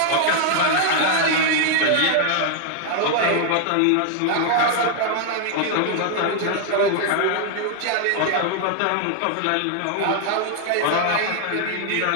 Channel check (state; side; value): different; both; correlation 0.00